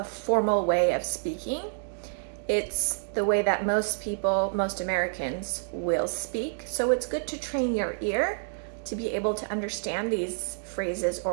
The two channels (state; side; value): silent; left; digital silence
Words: formal way of speaking. It's the way that most people, most Americans will speak. So it's good to train your ear to be able to understand these phrases